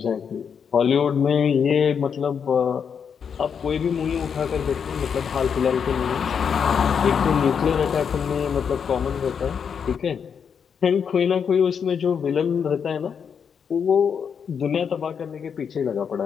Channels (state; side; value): quieter; right; 7.0 dB